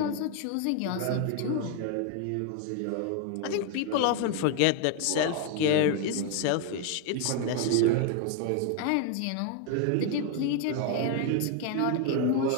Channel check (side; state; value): both; different; correlation 0.01